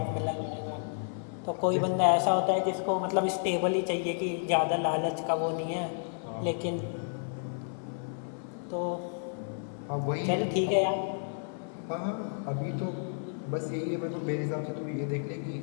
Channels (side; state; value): right; silent; 57 dB below the other